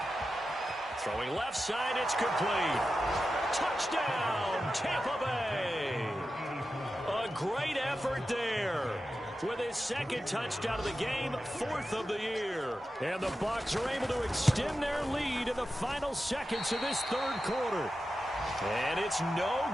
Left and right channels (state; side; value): normal; both; correlation 0.92